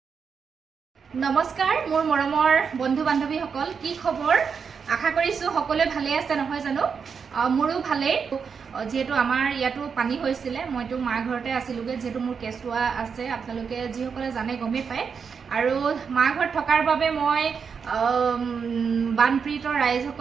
নমস্কাৰ, মোৰ মৰমৰ বন্ধু বান্ধৱীসকল, কি খবৰ? আশা কৰিছোঁ সকলোৱে ভালে আছে নহয় জানো? মোৰো ভালেই। যিহেতু আমাৰ ইয়াতো পানী হৈছিলে, মইতো মাৰ ঘৰতে আছিলোগৈ, যিহেতু মোৰ কেঁচুৱা আছে, আপোনালোকে যিসকলে জানে গমেই পায়। আৰু মাৰ ঘৰত থকাৰ বাবে মই বানপীড়িত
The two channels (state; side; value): quieter; left; 6.1 dB